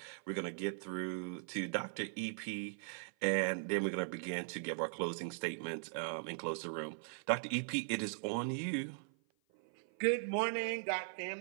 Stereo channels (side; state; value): left; silent; 51 dB below the other